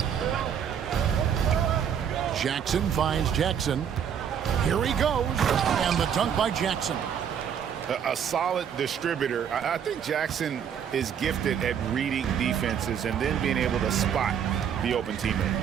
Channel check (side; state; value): left; quieter; 8.2 dB